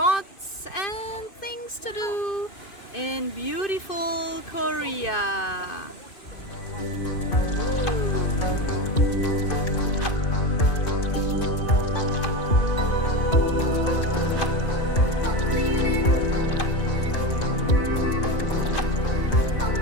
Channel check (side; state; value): right; late; 2.5 ms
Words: and things to do in beautiful Korea.